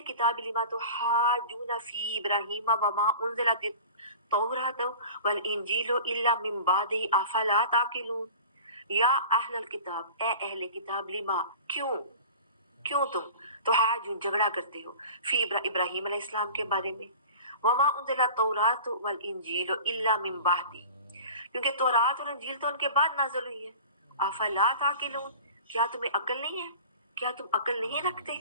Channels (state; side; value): inverted; both; correlation -0.40